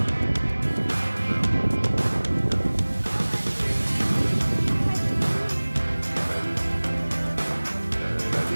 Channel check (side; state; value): both; inverted; correlation -1.00